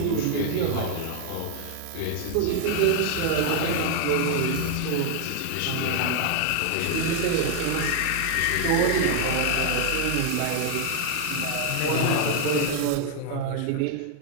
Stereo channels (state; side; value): different; both; correlation 0.00